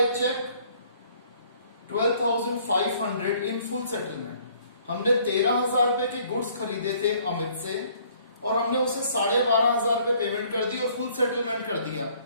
cheque 12,500 in full settlement. हमने 13,000 रुपए के गुड्स खरीदे थे अमित से, और हमने उसे 12,500 रुपए पेमेंट कर दी और फुल सेटलमेंट कर दिया,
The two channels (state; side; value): inverted; both; correlation -0.60